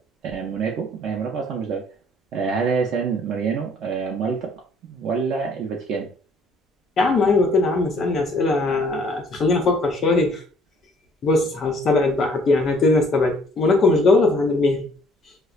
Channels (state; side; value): normal; both; correlation 0.60